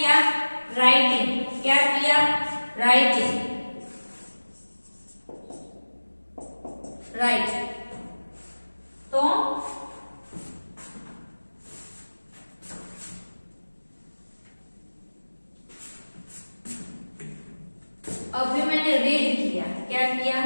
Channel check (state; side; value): inverted; both; correlation -1.00